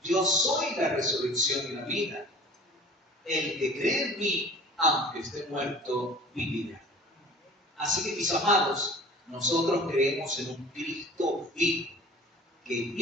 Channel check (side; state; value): both; normal; correlation 0.44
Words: yo soy la resurrección y la vida. El que cree en mí, aunque esté muerto, vivirá. Así que, mis amados, nosotros creemos en un Cristo vivo, que